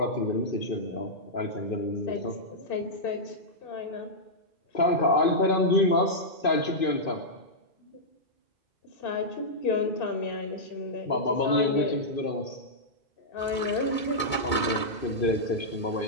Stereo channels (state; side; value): late; right; 2.2 ms